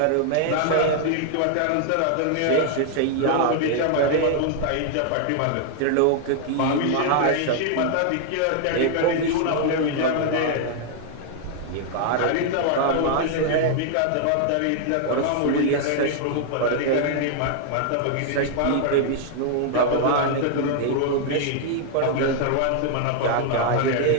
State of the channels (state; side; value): different; both; correlation 0.00